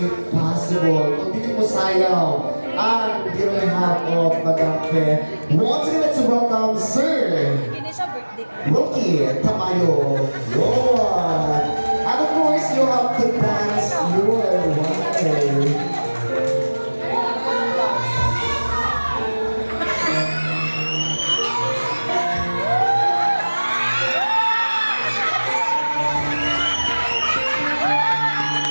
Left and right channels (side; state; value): both; inverted; correlation -1.00